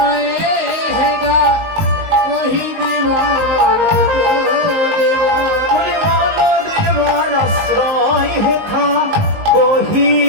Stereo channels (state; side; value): late; left; 19 ms